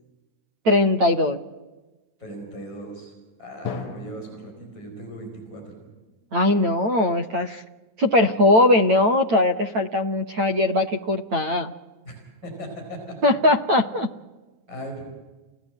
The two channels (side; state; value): left; late; 8.9 ms